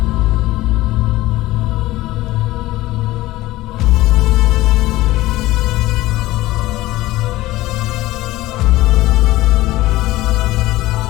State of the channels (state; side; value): quieter; right; 17.4 dB